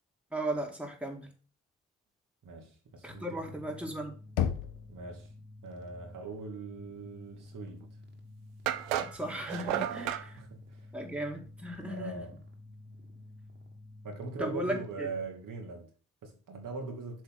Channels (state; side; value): normal; both; correlation 0.31